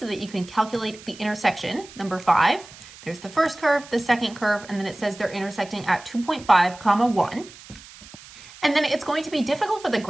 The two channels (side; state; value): right; noise; hiss, 19 dB below the sound